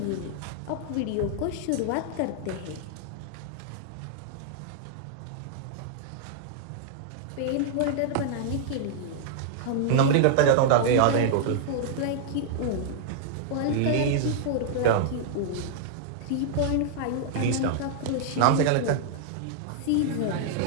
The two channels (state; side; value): different; both; correlation -0.01